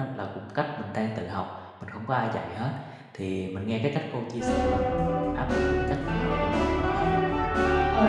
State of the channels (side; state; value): both; identical; correlation 1.00